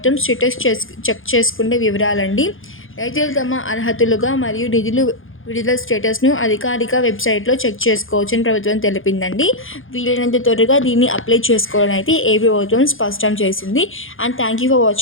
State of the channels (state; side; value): late; right; 0.59 ms